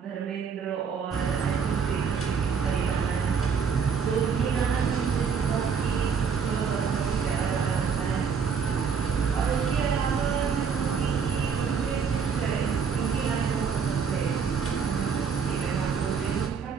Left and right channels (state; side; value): quieter; left; 6.2 dB